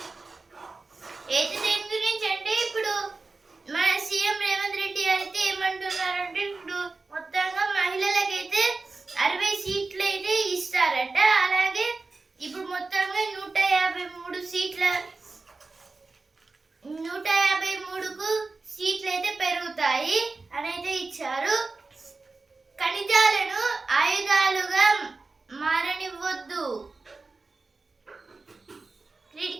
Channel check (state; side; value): quieter; left; 3.8 dB